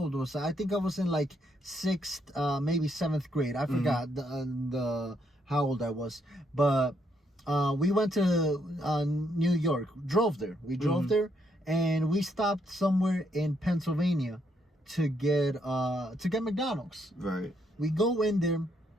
was I? I think I was in like 6th, maybe 7th grade. I forgot the how old I was. But we went to New York. Drove there. We drove there, and we stopped somewhere in Pennsylvania to get McDonald's. Right. We go in there.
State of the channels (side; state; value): both; normal; correlation 0.75